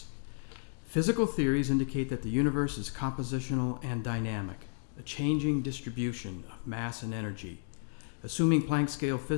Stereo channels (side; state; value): right; silent; digital silence